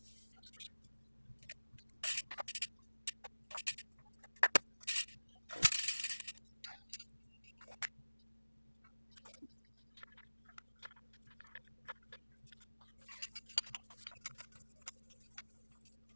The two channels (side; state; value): both; inverted; correlation -1.00